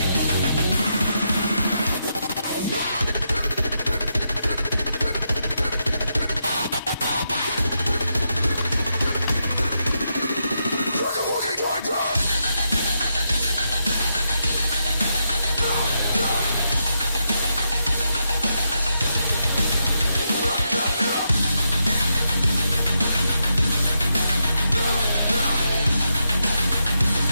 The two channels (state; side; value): inverted; both; correlation -0.83